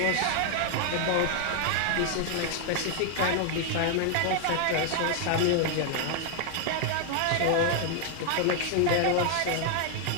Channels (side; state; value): both; different; correlation 0.00